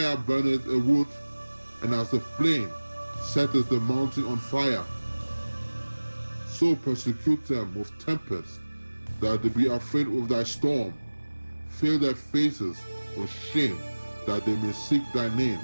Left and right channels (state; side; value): inverted; both; correlation -1.00